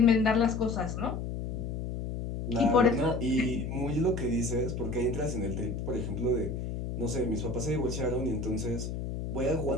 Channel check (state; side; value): noise; left; hum, 5 dB below the sound